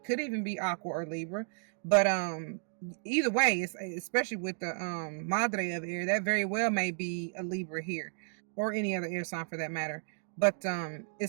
even be Aqua or Libra, but either way, it's especially with the Madre of air, that very well may be a Libra here, or any other air sign for that matter. But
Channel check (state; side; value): silent; left; 56 dB below the other